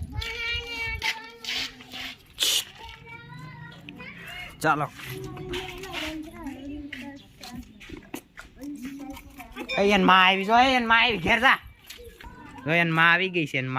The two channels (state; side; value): identical; both; correlation 1.00